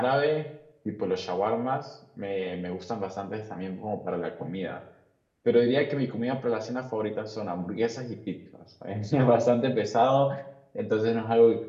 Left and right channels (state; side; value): identical; both; correlation 1.00